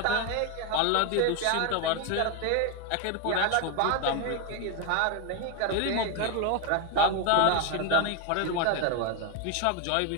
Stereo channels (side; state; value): both; different; correlation 0.01